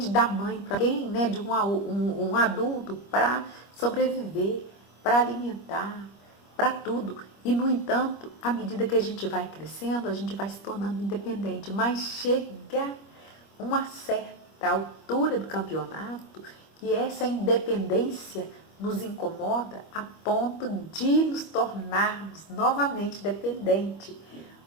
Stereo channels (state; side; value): late; right; 25 ms